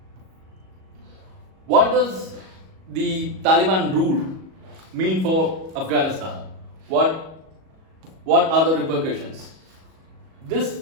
What does the Taliban rule mean for Afghanistan? What are the repercussions? This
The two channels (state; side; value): late; left; 37 ms